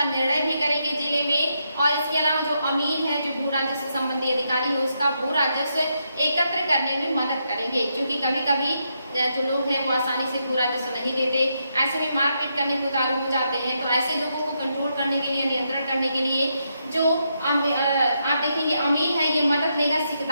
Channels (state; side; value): inverted; both; correlation -0.81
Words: निर्णय भी करेंगे जिले में। और इसके अलावा जो अमीर है जो भू राजस्व संबंधी अधिकारी है उसका भू राजस्व एकत्र करने में मदद करेंगे। क्योंकि कभी कभी जो लोग हैं वो आसानी से भू राजस्व नहीं देते, ऐसे में मारपीट करने को उतारू हो जाते हैं। तो ऐसे लोगों को कंट्रोल करने के लिए, नियंत्रण करने के लिए जो आप देखेंगे अमीन है, ये मदद लेगा